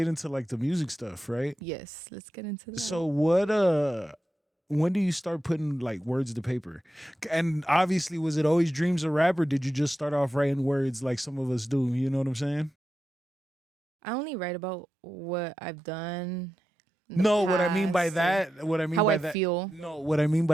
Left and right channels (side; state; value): both; normal; correlation 0.90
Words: into like the music stuff, right? Yes, let's get into that. So when do you start putting like words to paper? And obviously, was it always dreams of rap, or did you just start off writing words like some of us do? You know what I'm saying? I only write about what I've done in the No, what I mean by past or that, what I mean how by I that, feel. no, what I mean